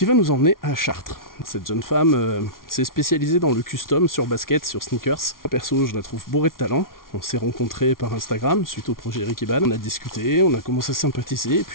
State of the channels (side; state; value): right; late; 0.92 ms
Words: va nous emmener à Chartres. Cette jeune femme s'est spécialisée dans le custom sur basket, sur sneakers. Perso, je la trouve bourrée de talent. On s'est rencontrés par Instagram suite au projet Rick Eban. On a discuté, on a commencé à sympathiser et